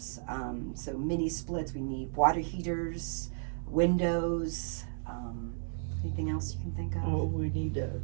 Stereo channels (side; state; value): left; silent; digital silence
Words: So mini splits, we need water heaters, windows, anything else you can think of? Oh, we need